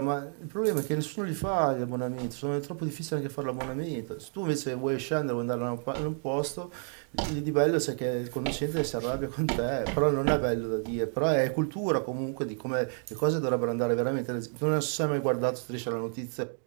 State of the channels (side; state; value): left; silent; 55 dB below the other